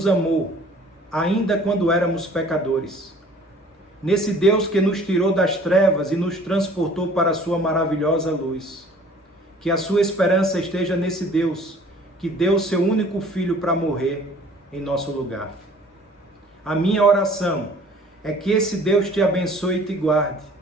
amou, ainda quando éramos pecadores, nesse Deus que nos tirou das trevas e nos transportou para a sua maravilhosa luz. Que a sua esperança esteja nesse Deus que deu seu único filho para morrer em nosso lugar. A minha oração é que esse Deus te abençoe e te guarde.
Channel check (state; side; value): normal; both; correlation 0.51